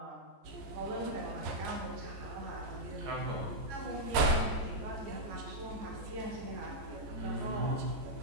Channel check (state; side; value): late; left; 14 ms